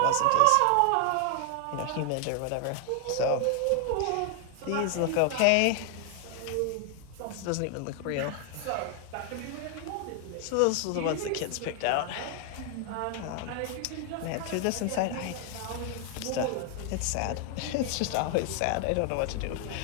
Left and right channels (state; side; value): different; both; correlation 0.00